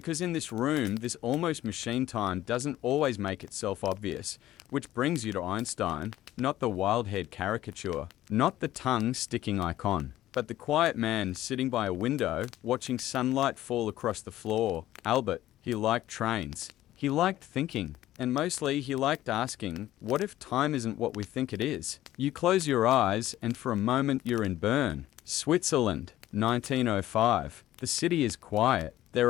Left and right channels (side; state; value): right; quieter; 14.1 dB